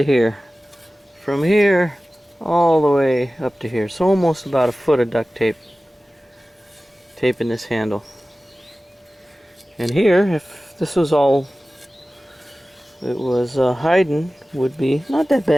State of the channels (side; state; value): both; normal; correlation 0.97